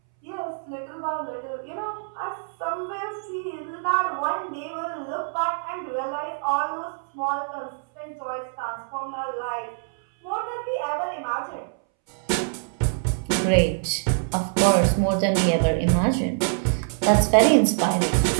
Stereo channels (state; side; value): silent; left; 62 dB below the other